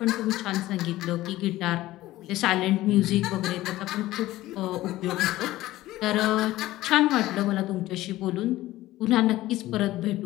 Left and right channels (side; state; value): right; quieter; 16.4 dB